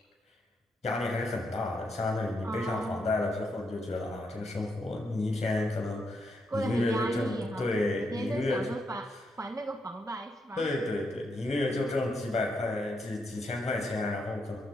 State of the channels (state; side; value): normal; both; correlation 0.80